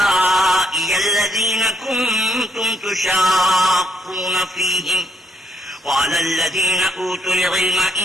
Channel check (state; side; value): normal; both; correlation 0.73